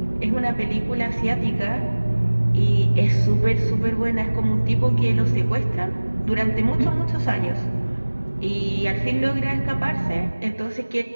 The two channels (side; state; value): both; inverted; correlation -1.00